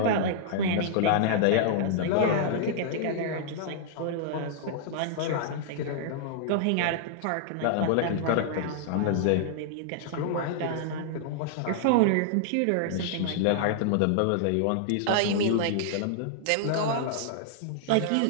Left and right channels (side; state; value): both; different; correlation -0.01